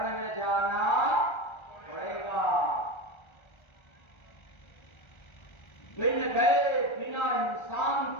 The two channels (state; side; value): late; right; 1.3 ms